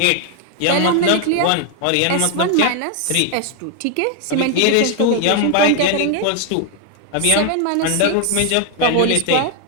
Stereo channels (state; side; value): different; both; correlation 0.00